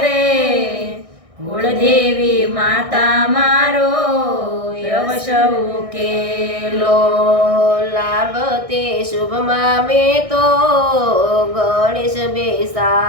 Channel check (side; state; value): left; late; 1.6 ms